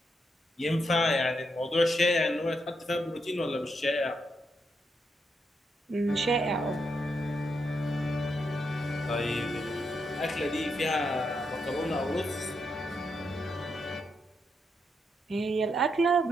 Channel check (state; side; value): normal; both; correlation 0.81